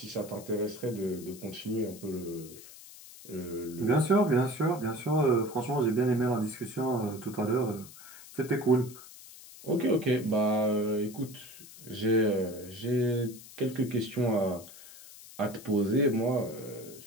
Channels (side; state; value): left; noise; hiss, 18 dB below the sound